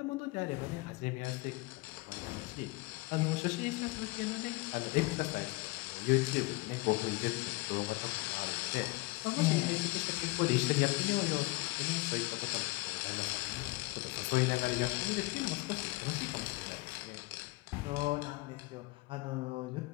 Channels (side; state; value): right; quieter; 23.1 dB